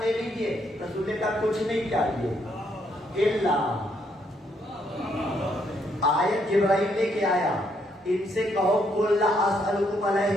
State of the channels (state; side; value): normal; both; correlation 0.73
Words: لے لیجیے. رسول نے کہا کچھ نہیں چاہیے الا، آیت جبرائیل لے کے آیا، ان سے کہو قل لا اسألکم